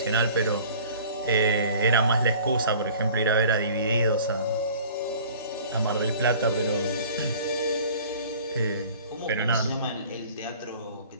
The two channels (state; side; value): inverted; both; correlation -0.47